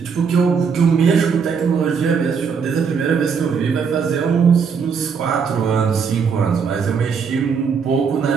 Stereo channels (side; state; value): left; quieter; 6.0 dB